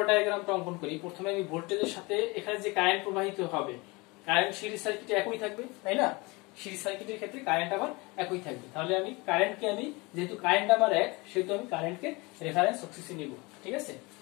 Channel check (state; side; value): quieter; right; 25.4 dB